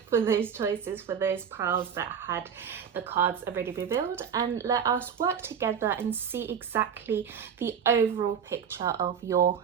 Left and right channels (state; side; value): quieter; left; 7.5 dB